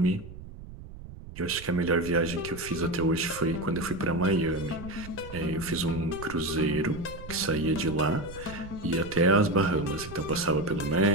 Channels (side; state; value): right; noise; rumble, 14 dB below the sound